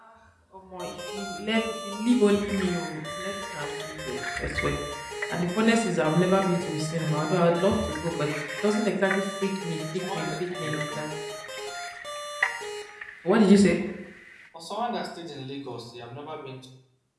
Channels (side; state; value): both; identical; correlation 1.00